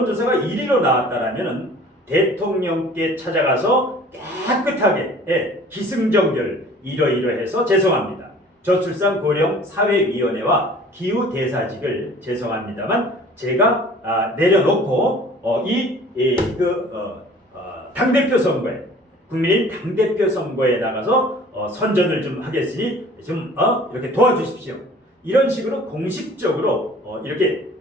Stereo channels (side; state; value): both; normal; correlation 0.49